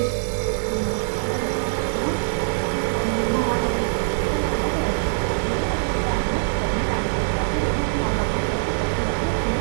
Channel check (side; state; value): left; silent; digital silence